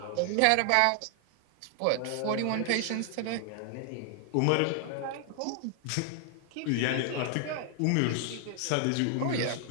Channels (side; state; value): both; different; correlation 0.00